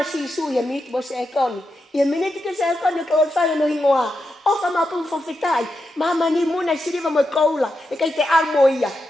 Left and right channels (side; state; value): both; normal; correlation 0.87